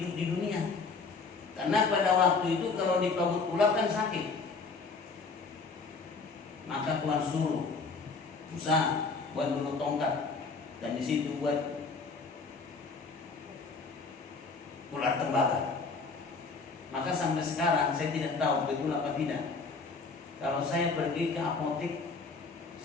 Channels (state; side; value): quieter; right; 4.4 dB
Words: dunia. Karena pada waktu itu kalau dipagut ular kan sakit. Maka Tuhan suruh Musa buat dulu tongkat, dan di situ buat ular tembaga. Maka sampai sekarang saya tidak tahu betul apa tidak. Kalau saya pergi ke apotek,